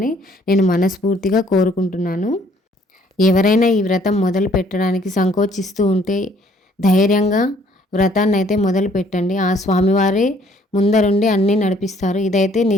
నేను మనస్ఫూర్తిగా కోరుకుంటున్నాను. ఎవరైనా ఈ వ్రతం మొదలు పెట్టడానికి సంకోచిస్తూ ఉంటే ధైర్యంగా వ్రతాన్ని అయితే మొదలు పెట్టండి. ఆ స్వామివారే ముందరుండి అన్నీ నడిపిస్తారు. ఇదైతే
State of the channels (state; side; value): normal; both; correlation 0.61